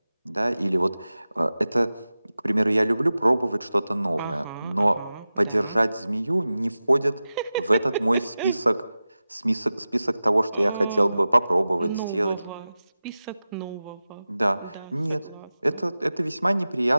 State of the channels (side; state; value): both; inverted; correlation -0.95